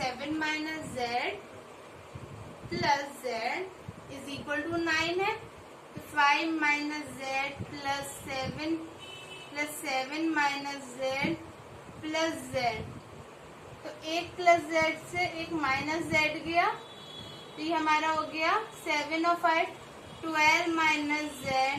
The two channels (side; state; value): both; identical; correlation 1.00